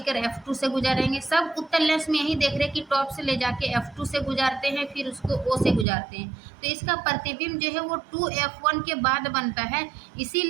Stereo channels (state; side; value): drops out; left; at 5.9 s